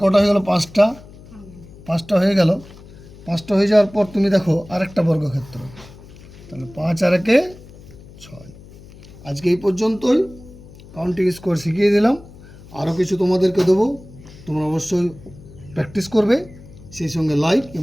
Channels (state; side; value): noise; left; hum, 20 dB below the sound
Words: কটা হয়ে গেল? 5টা, 5টা হয়ে গেল। 5টা হয়ে যাওয়ার পর তুমি দেখো আরেকটা বর্গক্ষেত্র, তাহলে 5 আর 1 6। আজকে এই পর্যন্তই, কাউন্টিং স্কোয়ার শিখিয়ে দিলাম। আরও কিছু তোমাদেরকে দেবো, তোমরা অবশ্যই প্র্যাকটিস করবে, সেই সঙ্গে লাইক